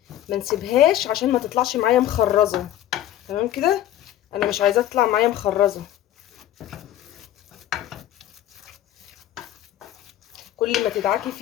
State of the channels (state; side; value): quieter; right; 12.7 dB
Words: ما نسيبهاش عشان ما تطلعش معايا مخرزه. تمام كده، انا مش عايزاها تطلع معايا مخرزه. كل ما تدعكي